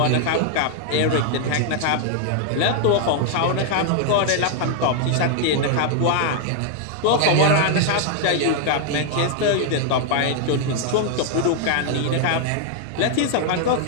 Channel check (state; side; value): different; both; correlation 0.00